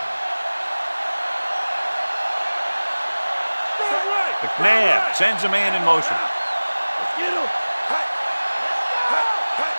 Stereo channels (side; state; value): both; inverted; correlation -1.00